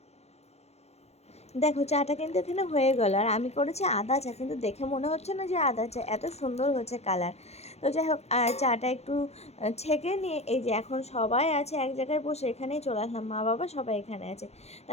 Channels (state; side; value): late; right; 0.31 ms